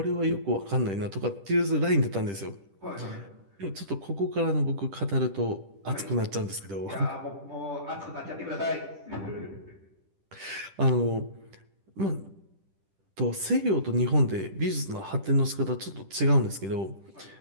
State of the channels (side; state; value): left; late; 10 ms